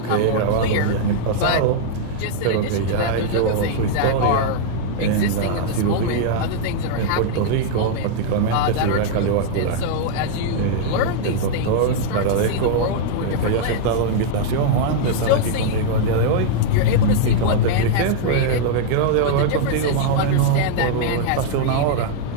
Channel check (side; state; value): both; different; correlation -0.01